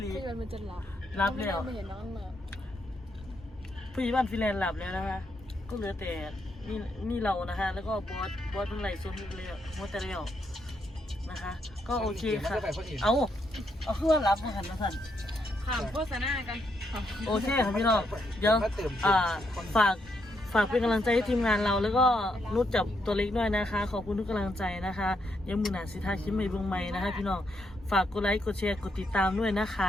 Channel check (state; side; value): normal; both; correlation 0.78